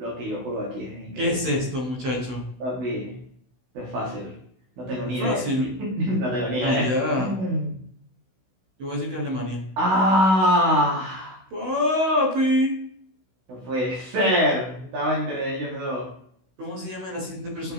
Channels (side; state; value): left; late; 16 ms